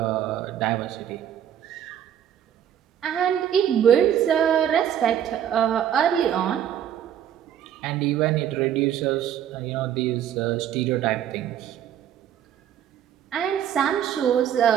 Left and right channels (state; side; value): quieter; left; 10.0 dB